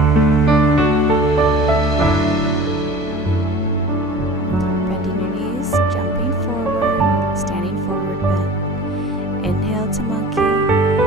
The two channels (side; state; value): left; noise; hum, 15 dB below the sound